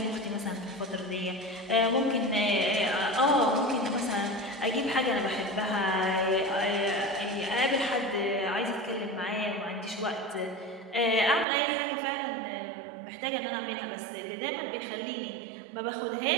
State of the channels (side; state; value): left; drops out; at 11.5 s